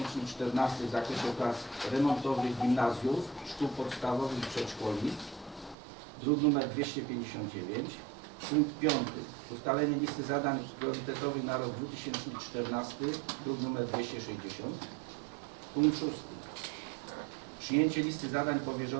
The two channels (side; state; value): left; drops out; at 5.8 s